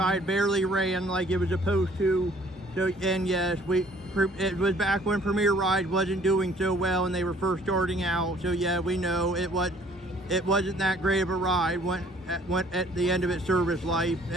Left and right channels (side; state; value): both; normal; correlation 0.57